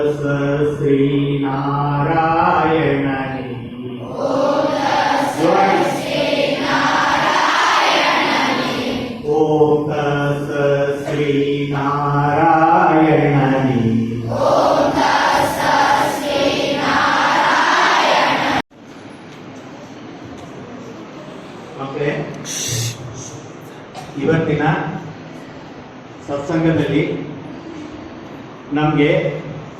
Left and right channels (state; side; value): identical; both; correlation 1.00